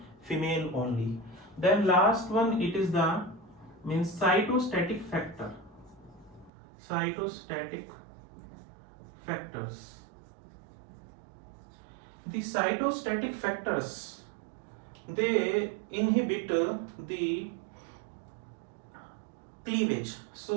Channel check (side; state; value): left; drops out; at 6.5 s